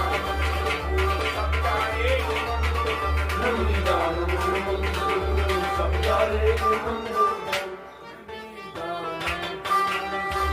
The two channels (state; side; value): identical; both; correlation 1.00